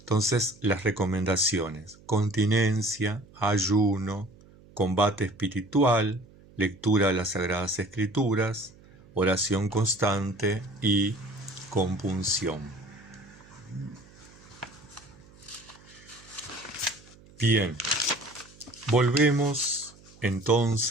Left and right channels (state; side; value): noise; right; hum, 25 dB below the sound